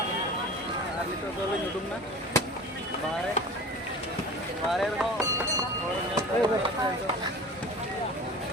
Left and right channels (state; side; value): normal; both; correlation 0.38